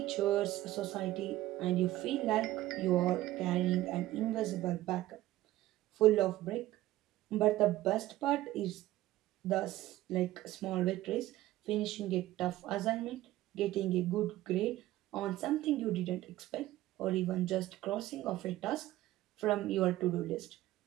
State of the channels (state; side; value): quieter; left; 15.6 dB